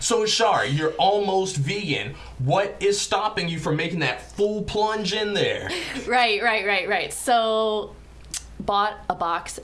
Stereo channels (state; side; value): identical; both; correlation 1.00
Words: So, Char, you're almost vegan. What is stopping you from making that full plunge in there? Right. So, bought a box